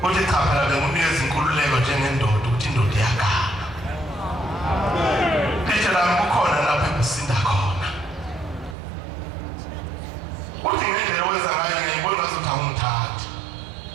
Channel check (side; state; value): left; drops out; at 8.8 s